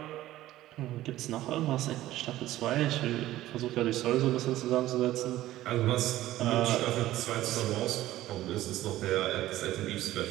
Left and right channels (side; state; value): left; quieter; 15.0 dB